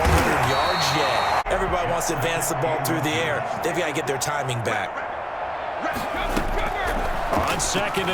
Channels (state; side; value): identical; both; correlation 1.00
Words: yards yet. Everybody wants to advance the ball through the air. They've got to get their timing back. On 2nd